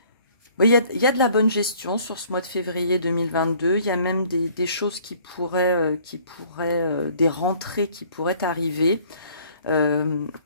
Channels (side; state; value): both; inverted; correlation -0.56